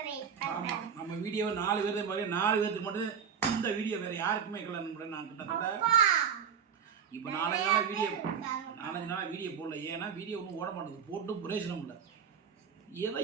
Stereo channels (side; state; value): left; quieter; 7.3 dB